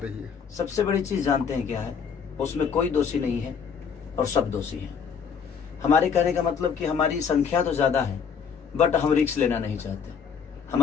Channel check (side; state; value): right; quieter; 6.7 dB